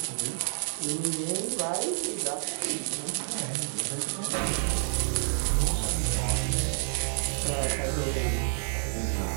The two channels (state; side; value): silent; left; digital silence